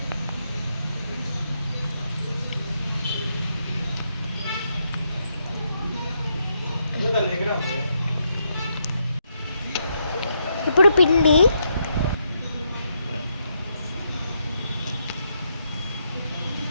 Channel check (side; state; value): both; inverted; correlation -0.79